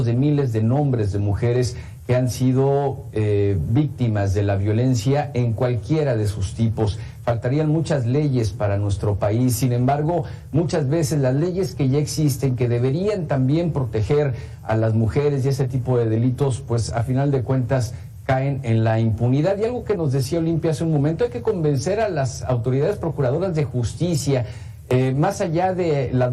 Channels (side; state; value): both; identical; correlation 1.00